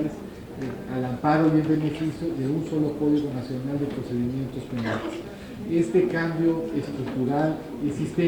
al amparo y en beneficio de un solo Código Nacional de Procedimientos Penales. Este cambio estructural y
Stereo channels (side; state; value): both; identical; correlation 1.00